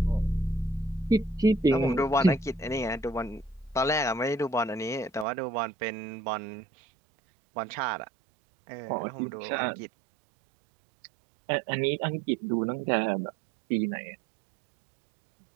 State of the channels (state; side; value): drops out; left; at 5.2 s